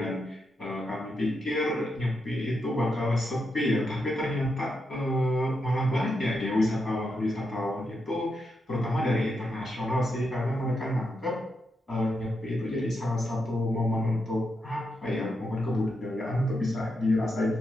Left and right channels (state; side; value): normal; both; correlation 0.84